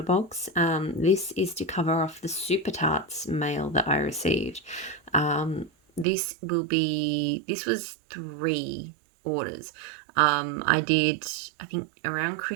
box. This is to cover off the Super Tarts mail that I received. This was 3 orders. I think around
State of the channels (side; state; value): left; drops out; at 6.1 s